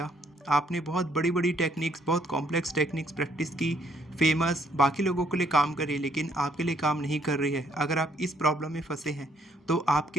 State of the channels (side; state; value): both; normal; correlation 0.68